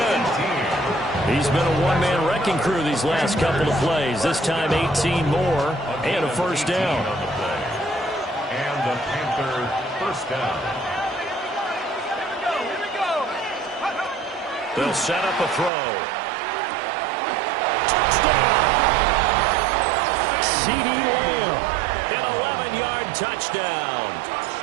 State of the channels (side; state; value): left; drops out; at 15.7 s